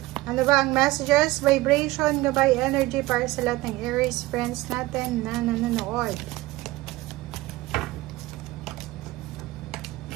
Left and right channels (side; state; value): left; quieter; 18.8 dB